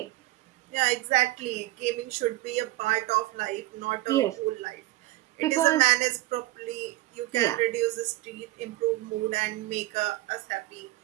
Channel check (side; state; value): left; quieter; 17.8 dB